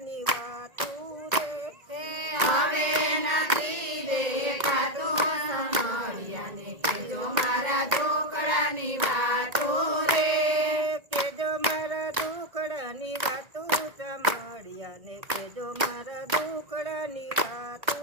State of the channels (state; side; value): late; left; 1.9 ms